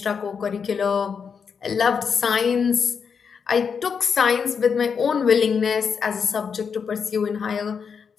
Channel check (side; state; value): right; quieter; 6.3 dB